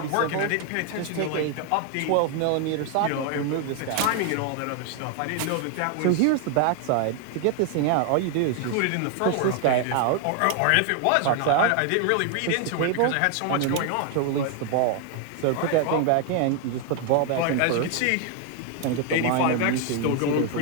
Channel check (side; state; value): both; different; correlation 0.00